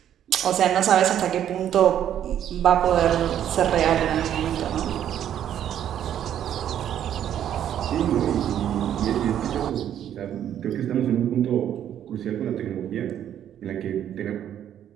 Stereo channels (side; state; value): left; quieter; 10.3 dB